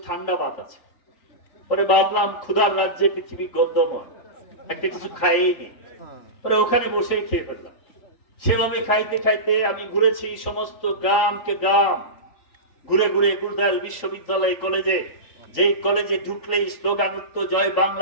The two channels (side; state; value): right; late; 3.8 ms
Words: ঠান্ডা ভাত আছে। পরে ভাবলাম ক্ষুধার রাজ্যে পৃথিবী গদ্যময়, একটা কিছু খাইয়ে নি। পরে ওখানে বসেই খেয়ে ফেললাম। সেভাবে খাইতে খাইতে আমি ঘুরেছি সমস্ত গ্রামকে গ্রাম ঘুরে ঘুরে গুরুদাল বিশ্ববিদ্যালয় কলেজে, যেই কলেজে ঢুকলেই স্লোগান উঠতো জয়